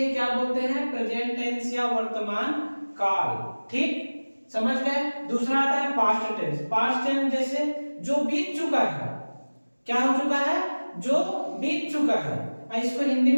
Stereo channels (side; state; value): both; inverted; correlation -1.00